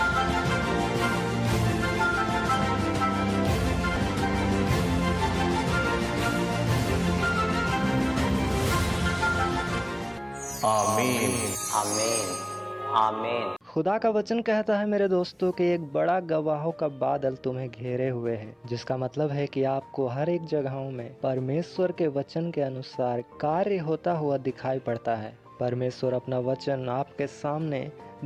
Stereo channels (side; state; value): both; identical; correlation 1.00